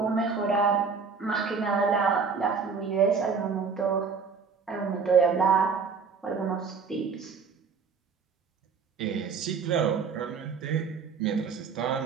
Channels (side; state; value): left; quieter; 5.4 dB